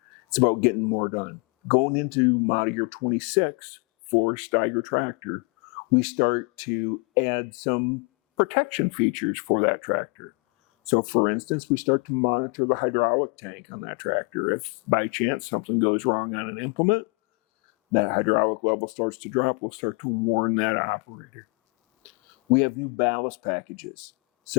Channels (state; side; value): quieter; right; 32.6 dB